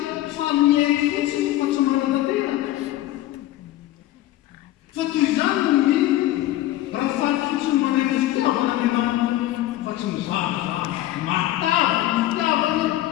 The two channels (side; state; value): right; quieter; 14.8 dB